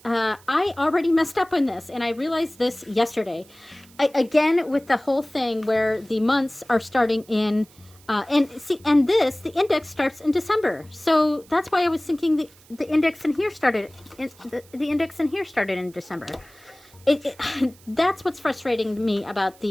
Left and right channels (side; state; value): right; noise; hiss, 26 dB below the sound